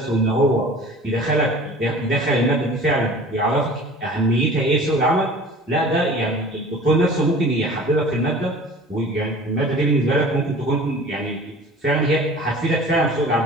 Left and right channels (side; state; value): both; normal; correlation 0.43